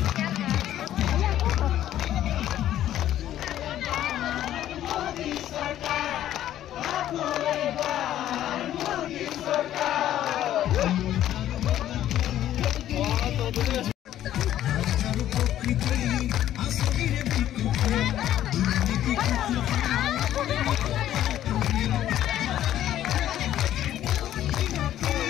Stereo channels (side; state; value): right; quieter; 12.2 dB